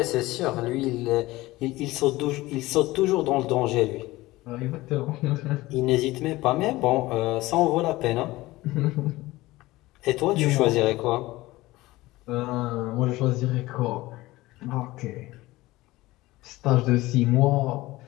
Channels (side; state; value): right; quieter; 18.8 dB